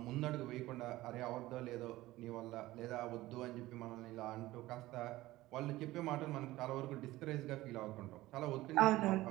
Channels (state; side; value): quieter; left; 17.4 dB